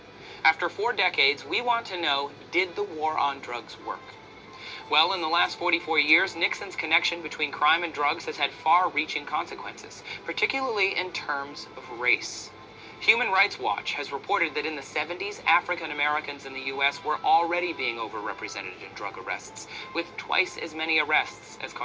After 4 decades, we want to know, did the war on drugs work? Well, in the last 44 years, Nixon's connection between crime and drugs has had far-reaching consequences, particularly in terms of race. Human Rights Watch has reported that in the 70s, African Americans in the U.S. were already being overrepresented in drug arrests, with twice as many arrests as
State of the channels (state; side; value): identical; both; correlation 1.00